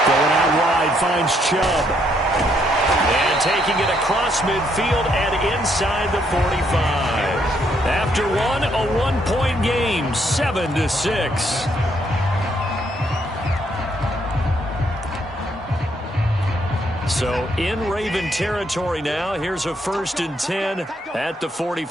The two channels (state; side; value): normal; both; correlation 0.72